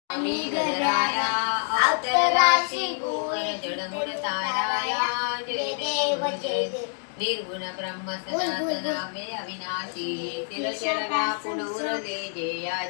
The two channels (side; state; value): right; silent; digital silence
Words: स्वामी गणराया अवतराशी गुण जडमुड ताराया जय देव जय देव निर्गुण ब्रह्म सनातनावे अविनाशी तिरशर व्यापुन उरले जे या